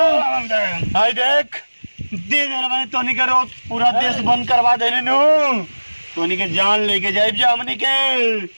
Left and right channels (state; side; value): inverted; both; correlation -1.00